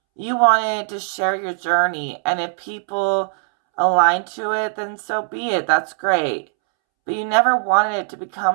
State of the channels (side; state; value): left; silent; 66 dB below the other